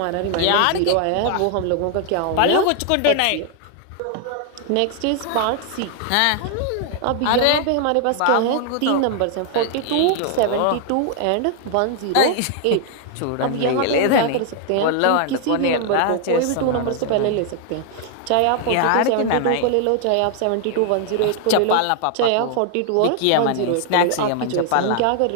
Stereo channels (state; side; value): different; both; correlation 0.00